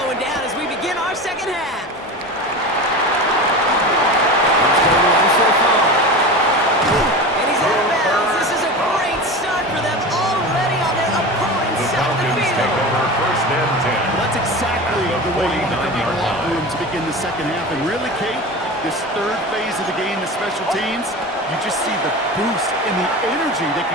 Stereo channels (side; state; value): both; normal; correlation 0.29